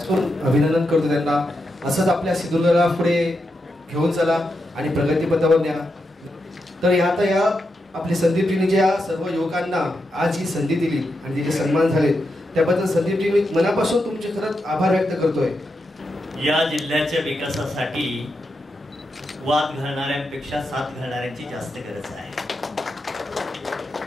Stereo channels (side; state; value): both; normal; correlation 0.85